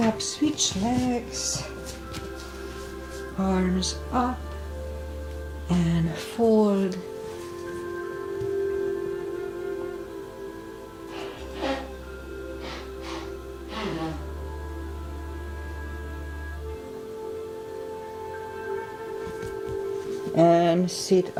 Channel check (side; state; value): both; identical; correlation 1.00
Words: switch legs, arms up and fold. And sit